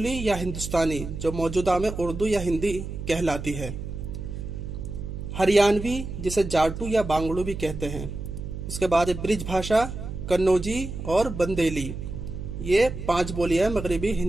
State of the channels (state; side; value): noise; right; hum, 7 dB below the sound